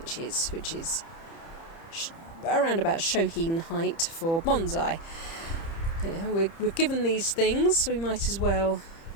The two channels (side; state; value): right; late; 30 ms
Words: which is around about Shohin height for bonsai. We're given these things, so we might as well